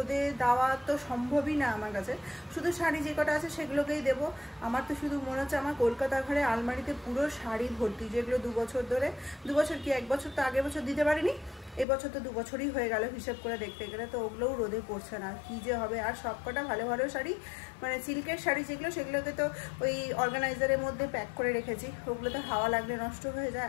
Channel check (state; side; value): drops out; right; at 11.9 s